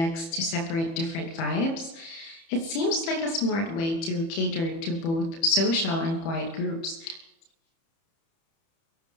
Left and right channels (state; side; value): late; right; 30 ms